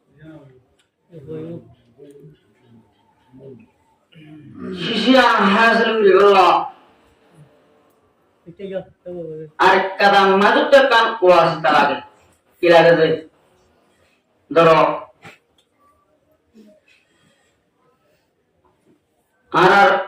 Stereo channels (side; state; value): both; identical; correlation 1.00